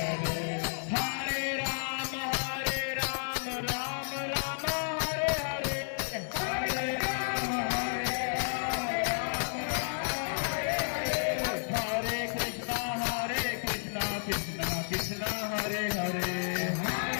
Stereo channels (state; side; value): silent; right; 57 dB below the other